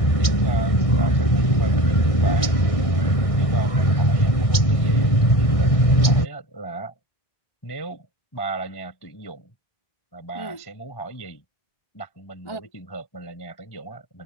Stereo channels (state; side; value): late; right; 1.6 ms